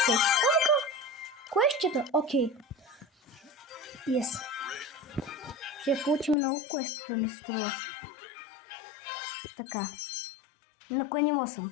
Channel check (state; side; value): drops out; right; at 6.4 s